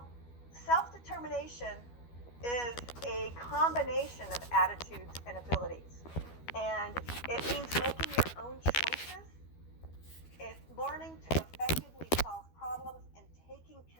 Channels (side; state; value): right; late; 12 ms